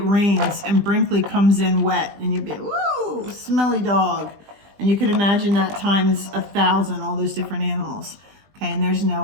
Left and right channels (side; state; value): left; late; 20 ms